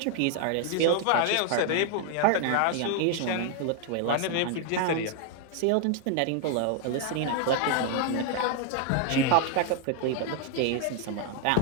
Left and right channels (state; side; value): different; both; correlation 0.00